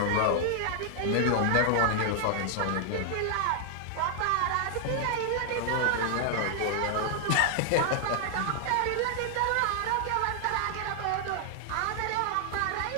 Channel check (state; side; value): different; both; correlation 0.00